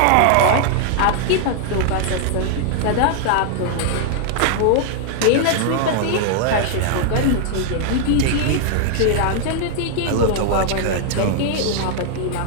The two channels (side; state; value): both; different; correlation 0.00